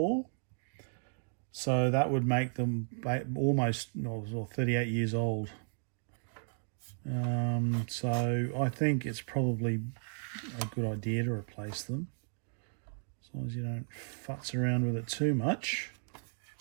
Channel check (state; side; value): silent; left; digital silence